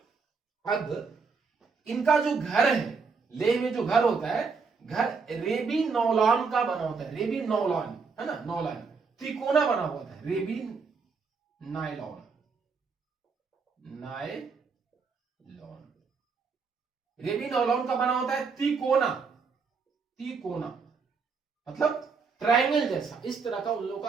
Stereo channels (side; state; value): left; quieter; 5.0 dB